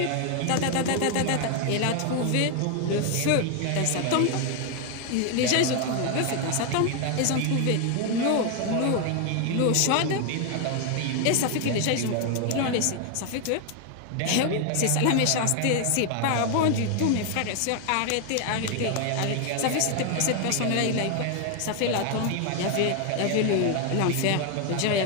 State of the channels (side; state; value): both; different; correlation 0.01